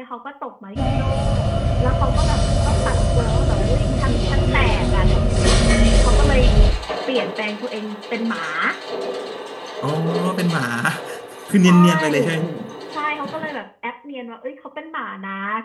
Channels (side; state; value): both; identical; correlation 1.00